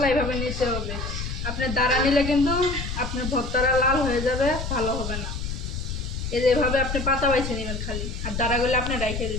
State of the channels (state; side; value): noise; left; rumble, 5 dB below the sound